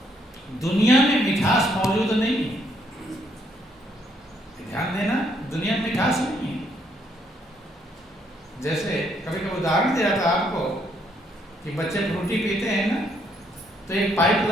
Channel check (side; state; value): both; normal; correlation 0.71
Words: दुनिया में मिठास मौजूद नहीं है, ध्यान देना, दुनिया में मिठास नहीं है। जैसे कभी कभी उदाहरण दिया था आपको कि बच्चे फ्रूटी पीते हैं ना, तो एक पाइप